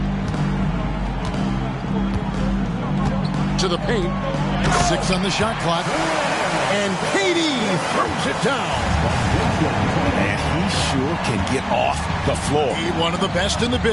To the paint. 6 on the shot clock. And KD throws it down. And he sure can get off the floor. He's one of the best in the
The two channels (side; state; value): both; identical; correlation 1.00